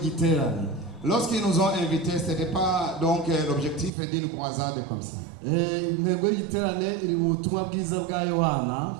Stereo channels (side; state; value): left; drops out; at 3.9 s